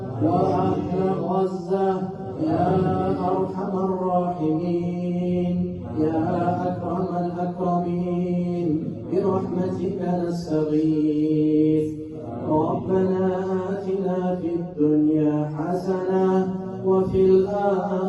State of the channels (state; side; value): identical; both; correlation 1.00